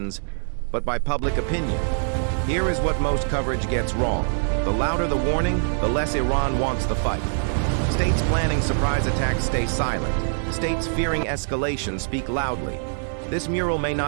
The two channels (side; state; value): left; silent; digital silence